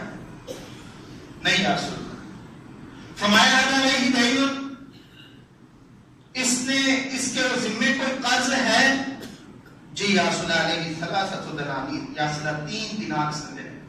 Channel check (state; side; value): identical; both; correlation 1.00